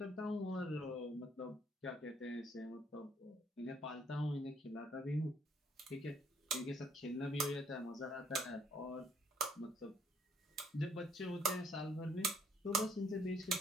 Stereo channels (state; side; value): normal; both; correlation 0.65